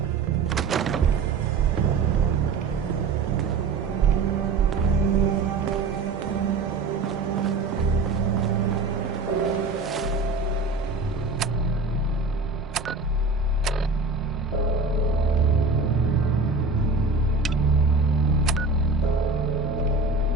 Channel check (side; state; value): left; quieter; 3.9 dB